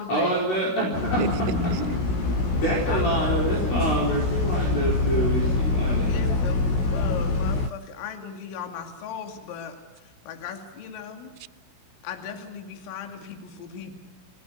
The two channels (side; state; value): right; late; 16 ms